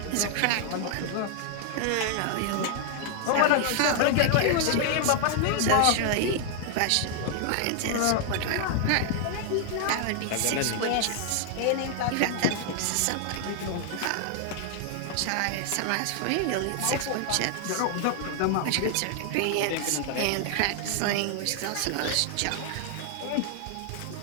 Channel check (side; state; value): both; different; correlation 0.00